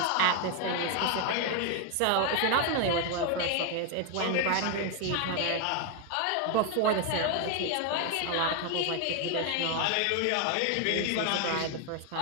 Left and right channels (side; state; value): both; different; correlation 0.01